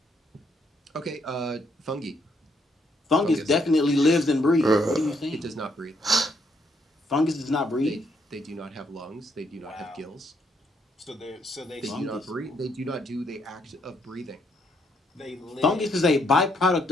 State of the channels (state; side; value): normal; both; correlation 0.73